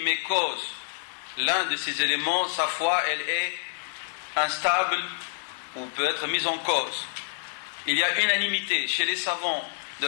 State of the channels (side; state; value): right; silent; 60 dB below the other